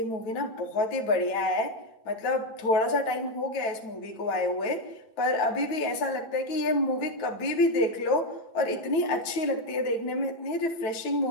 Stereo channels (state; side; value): late; right; 9.1 ms